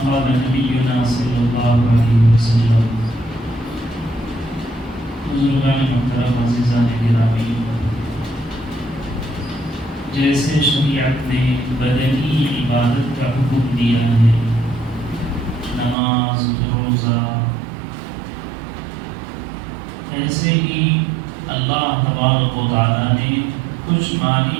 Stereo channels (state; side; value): drops out; left; at 16.0 s